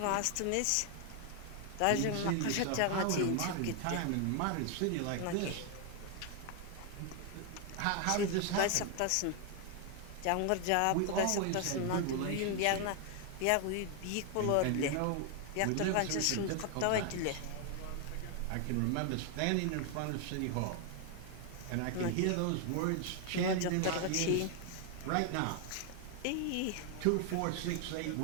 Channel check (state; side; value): different; both; correlation 0.00